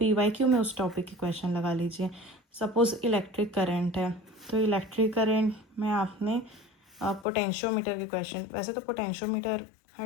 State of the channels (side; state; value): right; drops out; at 7.2 s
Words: PYQ में उस टॉपिक के क्वेश्चन लगा लीजिए। सपोज़ इलेक्ट्रिक करंट है, तो इलेक्ट्रिक करंट में आपने पोटेंशियोमीटर के क्वेश्चन, वैसे तो पोटेंशियोमीटर